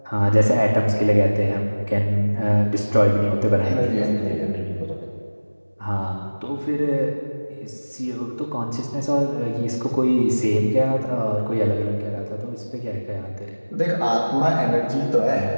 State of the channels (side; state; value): both; inverted; correlation -1.00